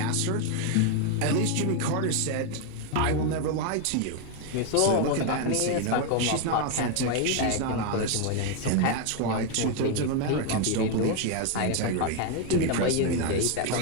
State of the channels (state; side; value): different; both; correlation 0.01